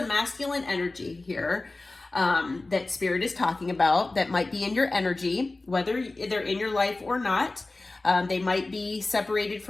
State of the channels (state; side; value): quieter; right; 3.1 dB